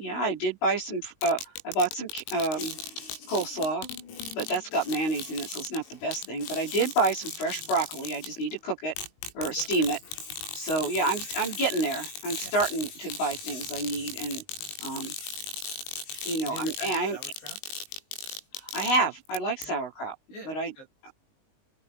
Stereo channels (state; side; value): late; right; 19 ms